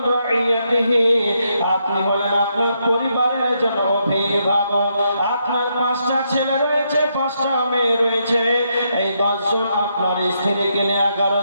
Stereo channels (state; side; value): inverted; both; correlation -0.78